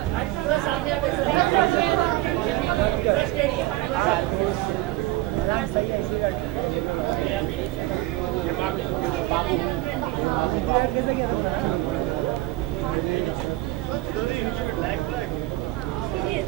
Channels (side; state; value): left; quieter; 17.8 dB